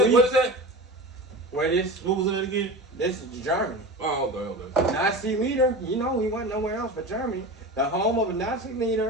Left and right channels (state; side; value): normal; both; correlation 0.30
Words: What is that? where this? What was that again? This is Germany. Oh, okay. Nazi leader, you know, he went nowhere else but Germany. The home of a Nazi